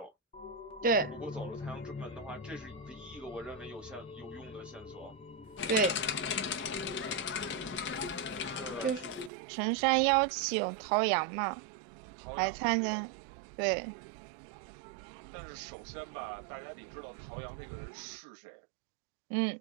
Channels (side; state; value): left; drops out; at 9.3 s